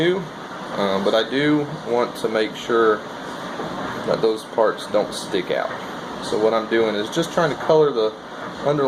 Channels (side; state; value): both; identical; correlation 1.00